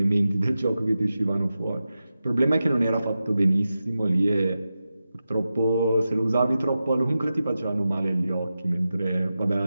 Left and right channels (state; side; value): inverted; both; correlation -0.92